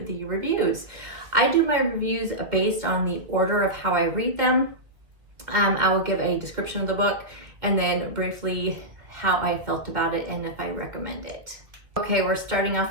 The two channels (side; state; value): left; late; 2.0 ms